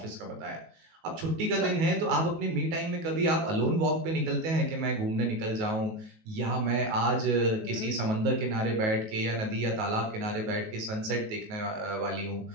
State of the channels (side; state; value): left; late; 19 ms